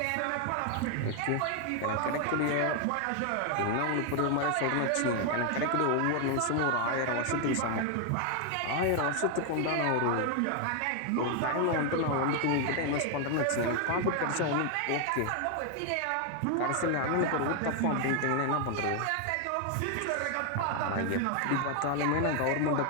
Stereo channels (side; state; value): both; different; correlation 0.01